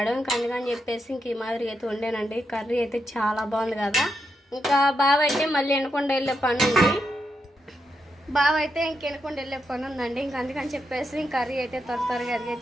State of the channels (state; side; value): normal; both; correlation 0.83